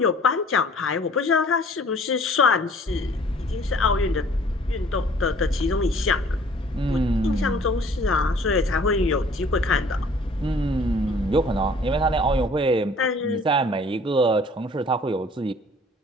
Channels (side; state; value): both; normal; correlation 0.53